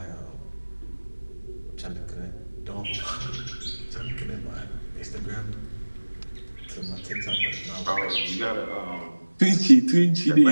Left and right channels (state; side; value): inverted; both; correlation -1.00